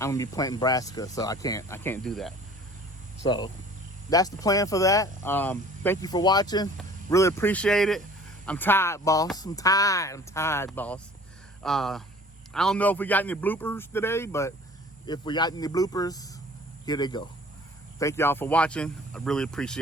be planting brassica, so I can't do that. So that's the plan for that. Thank you for watching. Really appreciate it. I'm tired, boss. I'm tired, boss. I don't know if we got any bloopers today, but if we got any bloopers, here they go. Thank y'all for watching. I really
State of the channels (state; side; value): normal; both; correlation 0.48